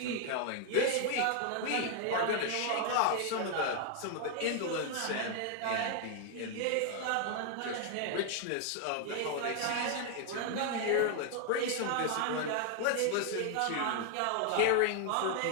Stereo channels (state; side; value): different; both; correlation 0.00